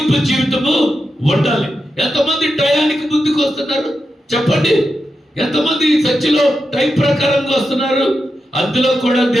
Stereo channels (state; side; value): normal; both; correlation 0.88